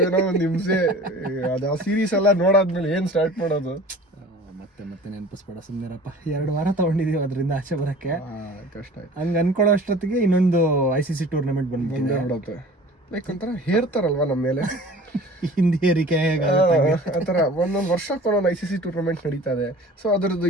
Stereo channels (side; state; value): both; normal; correlation 0.43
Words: ಒಂದು ಹಿಂಸೆ. ಅದು ಆ ಸೀರೀಸ್ ಎಲ್ಲ ನೋಡಾದ್ಮೇಲೆ ಏನ್ ಸ್ಟಾರ್ಟ್ ಮಾಡೋದು? ಮತ್ತೆ ನೆನಪಿಸ್ಬೇಡ, ಸುಮ್ಮನಿರಪ್ಪ. 2 ವಾರ ತಗೊಂಡಿದೀವಿ ಅದರಿಂದ ಆಚೆ ಬರಕ್ಕೆ. ಕಷ್ಟ ಆಯ್ತು. ಹಂಗ ಅನ್ಕೊಳ್ಳೋ ಅಷ್ಟೊತ್ತಿಗೆ ಇನ್ನೊಂದು ICC ಟೂರ್ನಮೆಂಟ್ ಬಂದ್ಬಿಡುತ್ತೆ. ಲೈಕ್ ಒಂಥರ ಹೇರ್ತಾರಲ್ವಾ ನಮ್ಮ ಮೇಲೆ ಹಿಂದಿ ಏರಿಕೆ ಆತರ ಒಂದೊಂದು ವರ್ಷಕ್ಕೆ ಒಂದೊಂದು ICC ಟೂರ್ನಮೆಂಟ್ ನಡೀತಾ ಇದೆ. ಸೊ ಅದರದ್ದು